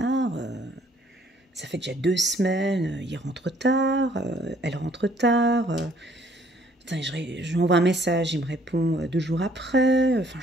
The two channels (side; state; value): both; normal; correlation 0.61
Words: ça fait déjà 2 semaines, il rentre tard, elle rentre tard... Putain, je lui envoie un message, il me répond 2 jours après. Enfin,